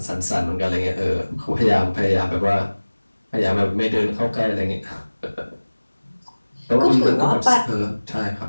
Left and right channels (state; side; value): inverted; both; correlation -1.00